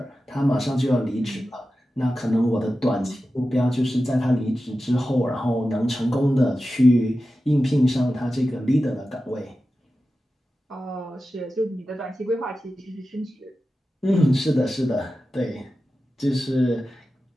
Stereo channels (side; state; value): both; normal; correlation 0.93